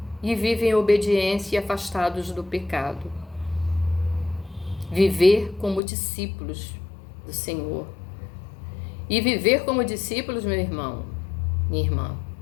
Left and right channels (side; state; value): right; drops out; at 5.8 s